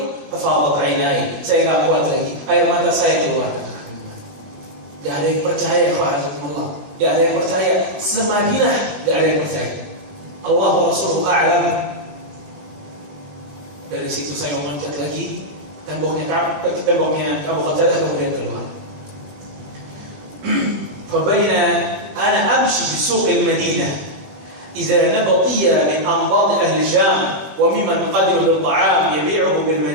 fafadat 'ainai. Saya enggak kuat lagi. Air mata saya keluar. Enggak ada yang percaya kepada Allah. Enggak ada yang percaya. Semadinah enggak ada yang percaya. Allah wa Rasuluhu a'lam. Dari situ saya memanjat lagi. Temboknya Abu Qatadah kemudian keluar. Fabaina ana amshi bi suq al-Madinah idza nabatiya min anbad ahli Sham wa mimman qadimu bil ta'am yabi'uhu bil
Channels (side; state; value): left; late; 20 ms